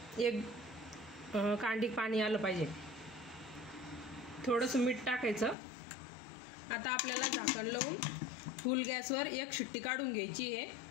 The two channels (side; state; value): right; drops out; at 5.6 s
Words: एक कांडी पाणी आलं पाहिजे। थोडंसं मीठ टाकायचं। आता आपल्याला झाकण लावून फुल गॅसवर एक शिट्टी काढून घ्यायची आहे।